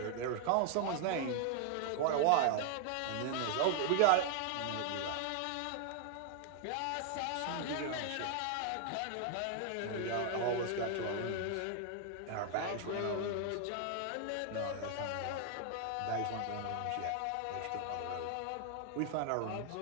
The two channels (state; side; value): different; both; correlation 0.00